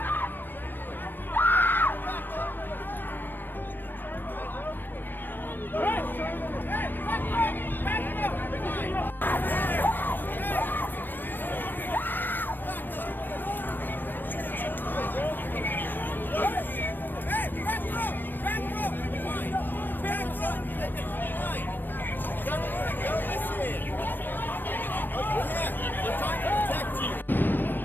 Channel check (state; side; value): late; right; 0.092 ms